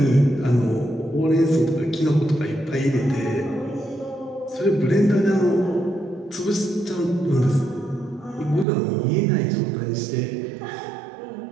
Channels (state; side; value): drops out; left; at 8.7 s